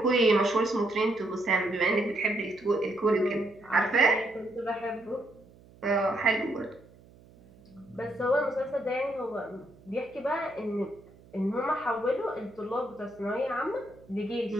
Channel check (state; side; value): noise; right; hum, 25 dB below the sound